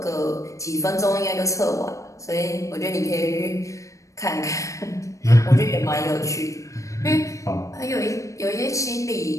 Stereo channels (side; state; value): right; late; 0.15 ms